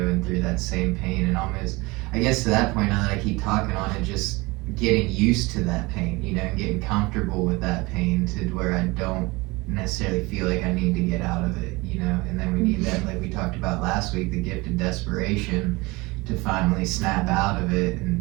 through that same pain, and almost, I guess to that point, now that I keep talking on it, just getting used to that pain, you know, and getting comfortable with that pain to where I don't necessarily feel like I need to get out of it, you know. And then we need that, like we talked about last week, the gift of desperation to finally snap out of it,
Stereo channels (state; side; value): quieter; left; 23.5 dB